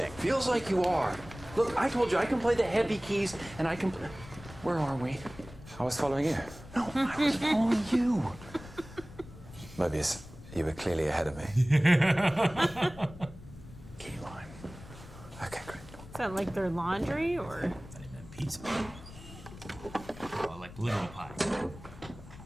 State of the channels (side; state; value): left; noise; rumble, 17 dB below the sound